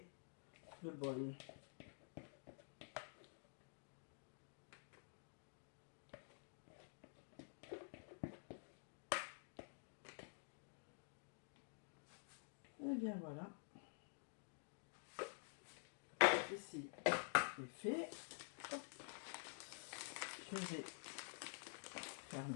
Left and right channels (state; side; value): silent; right; digital silence